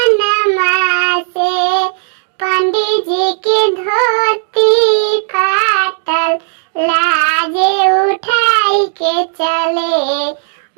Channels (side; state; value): left; silent; 66 dB below the other